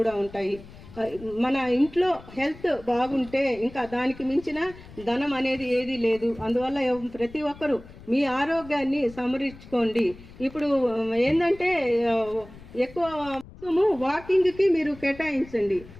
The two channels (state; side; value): noise; left; rumble, 19 dB below the sound